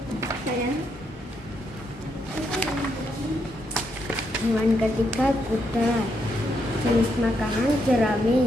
Hewan ketiga kuda. Jenis makanan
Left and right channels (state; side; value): normal; both; correlation 0.78